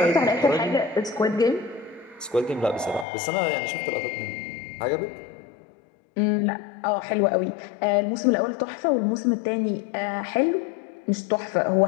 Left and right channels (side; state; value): right; drops out; at 3.1 s